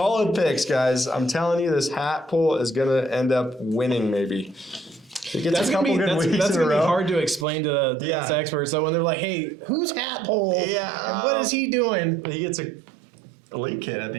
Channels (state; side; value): drops out; left; at 7.5 s